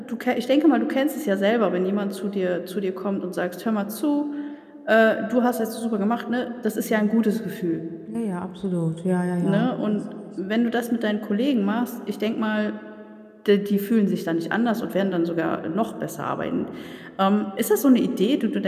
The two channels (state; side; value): identical; both; correlation 1.00